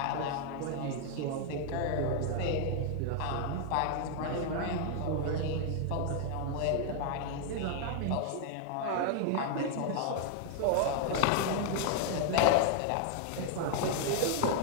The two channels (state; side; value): different; both; correlation 0.00